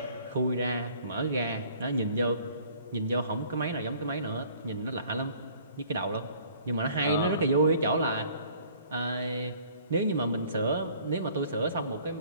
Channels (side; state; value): both; inverted; correlation -0.55